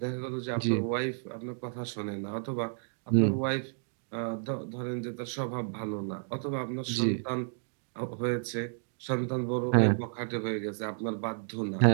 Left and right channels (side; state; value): left; silent; digital silence